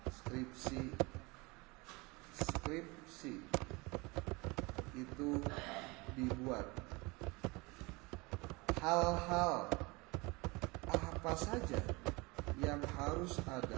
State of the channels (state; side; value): quieter; left; 25.4 dB